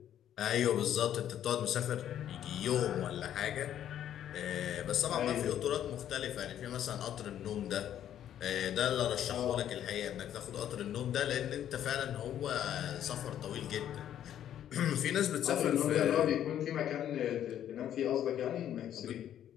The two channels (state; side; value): quieter; right; 10.7 dB